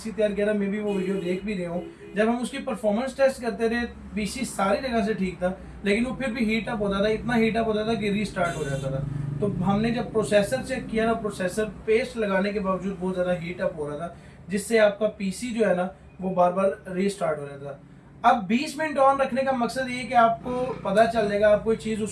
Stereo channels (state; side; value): identical; both; correlation 1.00